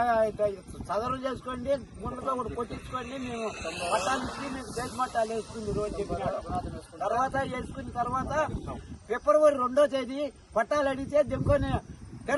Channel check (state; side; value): identical; both; correlation 1.00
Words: చదవలు చేసుకోండి, గుండెతో కూడా కొట్టించుకోండి, మేము పట్టాలిచ్చి మీకు దేశ మట్టాలు వేసుకుంది రోజు చెప్పినాడు. తర్వాత వేసుకున్న తర్వాత ఫిబ్రవరి 2వ తేదీ పట్టాలు అడిగితే దింకొని